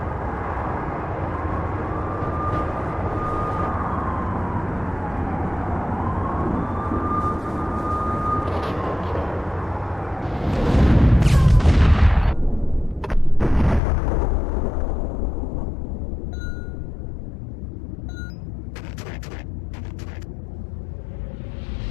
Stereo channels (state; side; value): drops out; right; at 13.8 s